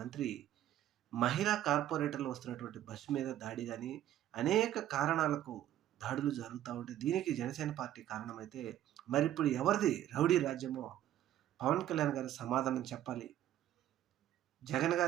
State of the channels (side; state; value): left; quieter; 12.3 dB